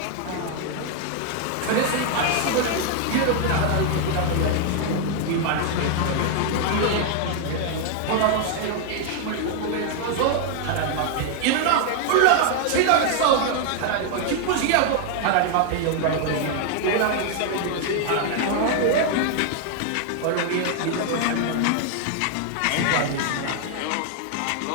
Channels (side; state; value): both; different; correlation 0.00